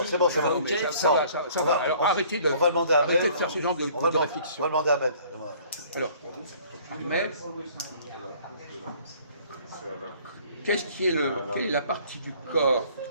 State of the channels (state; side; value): inverted; both; correlation -0.55